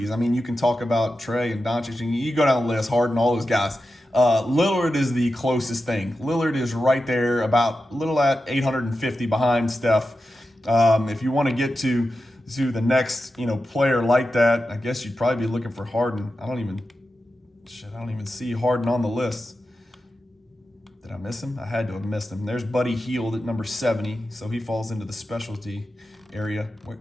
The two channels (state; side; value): normal; both; correlation 0.91